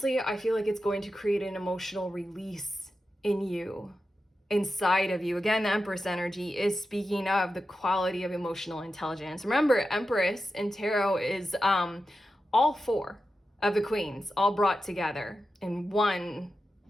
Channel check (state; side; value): normal; both; correlation 0.91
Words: I feel like it's going to create an emotional release in you, inside of you. Again, the Empress energy is speaking of the quality of emotional intelligence. Remember, Empress in tarot is all four of the queens all brought together in one